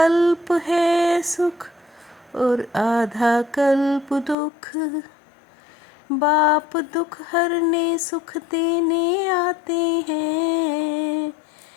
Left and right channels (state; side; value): drops out; right; at 4.4 s